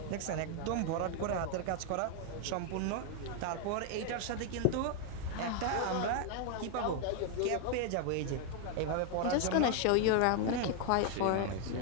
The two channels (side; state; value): both; different; correlation 0.00